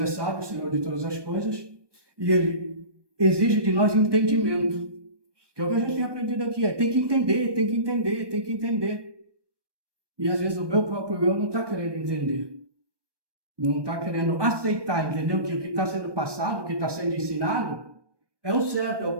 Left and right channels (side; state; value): left; late; 1.2 ms